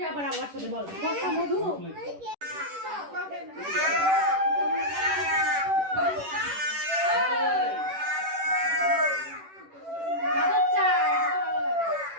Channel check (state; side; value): late; left; 10 ms